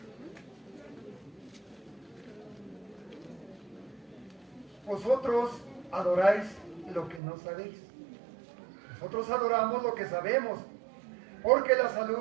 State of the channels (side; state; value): left; drops out; at 7.2 s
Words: Vosotros adoráis lo que no sabéis. Nosotros adoramos lo que sabemos, porque la